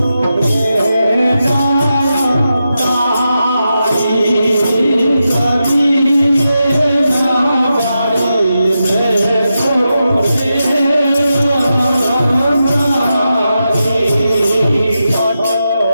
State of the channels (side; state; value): both; inverted; correlation -0.88